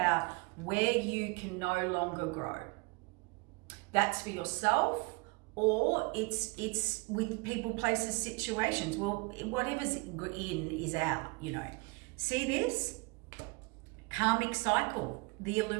where you can no longer grow. That's for yourself, or it's with people, places, situations. Well, whatever's in is out, you know. See this? Karmic cycle, the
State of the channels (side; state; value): left; quieter; 28.2 dB